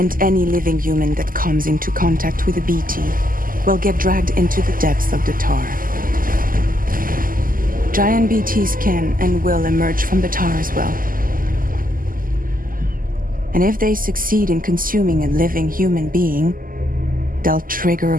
any living human that comes into contact with a BT will get dragged into the depths of the tar. Giant BTs can and will emerge from the tar as well. And if they succeed in consuming a living human being, they'll trigger a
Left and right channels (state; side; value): late; left; 0.41 ms